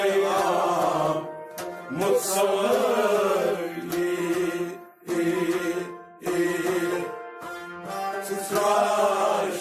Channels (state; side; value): identical; both; correlation 1.00